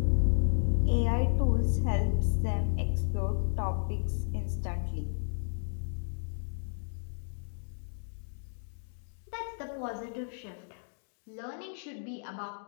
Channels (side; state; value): right; silent; digital silence